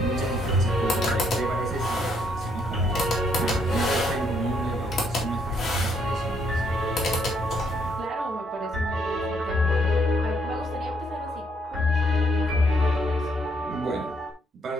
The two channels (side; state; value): both; normal; correlation 0.71